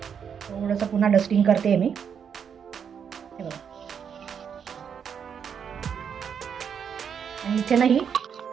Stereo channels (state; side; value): quieter; left; 7.4 dB